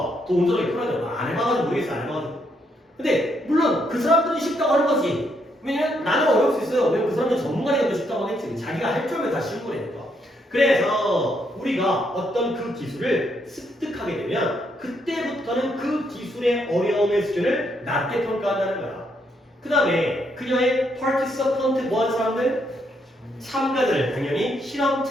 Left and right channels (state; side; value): normal; both; correlation 0.75